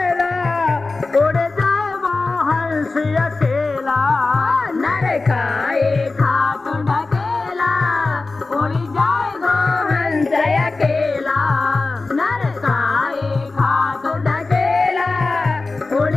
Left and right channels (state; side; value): quieter; right; 3.6 dB